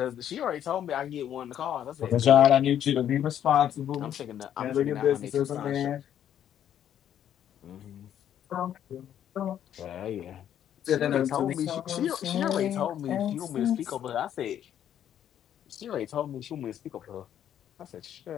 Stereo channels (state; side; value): quieter; right; 10.2 dB